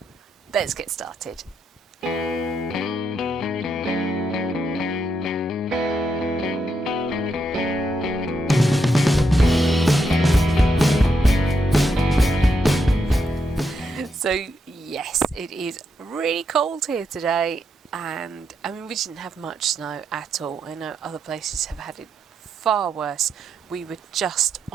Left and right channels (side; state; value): both; normal; correlation 0.81